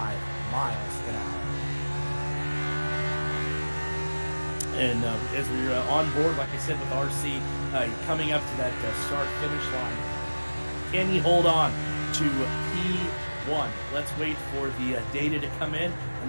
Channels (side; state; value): both; inverted; correlation -1.00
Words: miles an hour. And as we're on board, like I said, with RC coming up to that start-finish line, can he hold on to P1? Let's wait for the data to come in, and